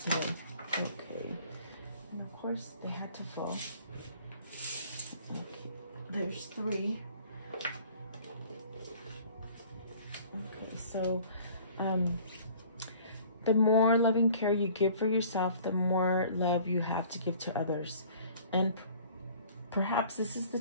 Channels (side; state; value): both; inverted; correlation -0.51